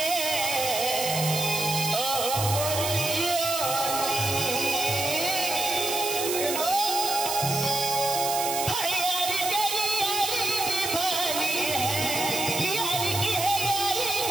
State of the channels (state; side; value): noise; right; hiss, 3 dB below the sound